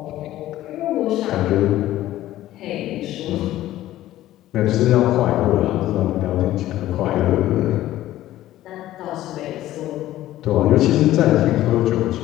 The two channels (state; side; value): quieter; right; 14.4 dB